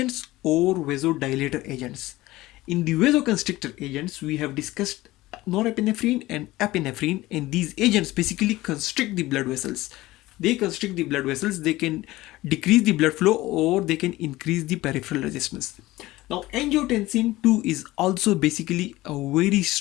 or vasodilator agents. In the vasoconstrictor agents, we have discussed norepinephrine and epinephrine, and these agents basically constrict the blood vessels. They constrict the blood vessels, they can decrease the blood flow or they can increase the peripheral resistance. Now, angiotensin 2 is also basically a very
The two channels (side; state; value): right; quieter; 18.1 dB